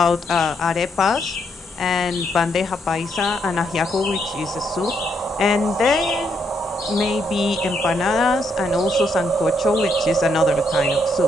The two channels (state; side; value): normal; both; correlation 0.76